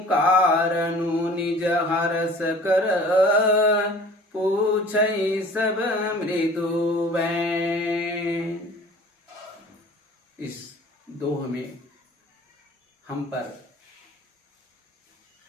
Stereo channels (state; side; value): normal; both; correlation 0.46